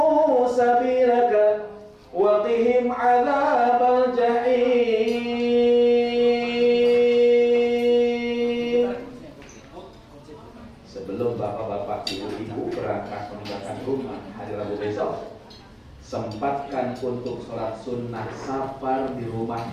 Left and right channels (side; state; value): both; identical; correlation 1.00